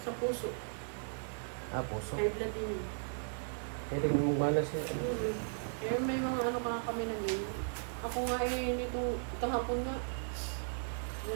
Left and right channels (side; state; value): left; silent; digital silence